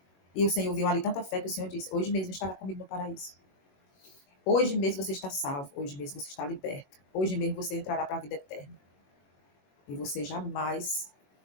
E o Senhor viu ali tanta fé que o Senhor disse: hoje mesmo estará comigo no paraíso. Hoje mesmo você está salvo, hoje mesmo você está liberto, hoje mesmo você entrará para a vida eterna. E você jamais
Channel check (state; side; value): late; right; 22 ms